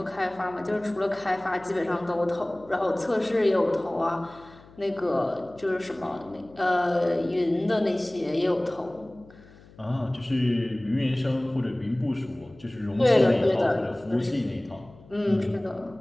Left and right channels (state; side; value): noise; left; hum, 23 dB below the sound